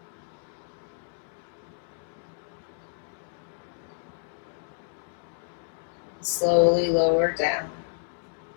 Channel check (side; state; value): right; silent; digital silence